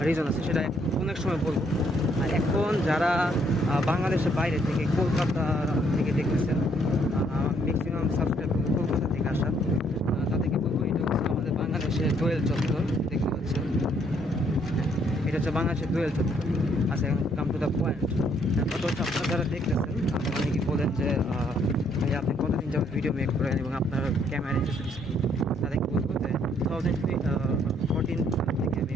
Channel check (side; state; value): both; normal; correlation 0.68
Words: রিজন আছে, সেটা অনেক সময় বলবো। আর এখন যারা বাংলাদেশের বাইরে থেকে, কলকাতা থেকে দেখতেছেন, ম্যাক্সিমাম সাবস্ক্রাইব কলকাতা থেকে আসা, তাদেরকে বলবো এটা হচ্ছে আমাদের বাংলাদেশের দোয়েল চত্বর। দেখতে পাচ্ছেন, এটা হচ্ছে বাংলাদেশের দোয়েল চত্বর। আচ্ছা, এখন কাম টু দ্য পয়েন্ট। কত হচ্ছে আপনারা যারা দেখতেছেন, আপনারা অনেকেই বলেন যে ভাই আপনি কতদিন যাবত ভিডিও মেক করেন এবং আপনার ক্যামেরা ইন্টারেস্ট কি, তাদেরকে বলবো যে 2014 থেকে আমি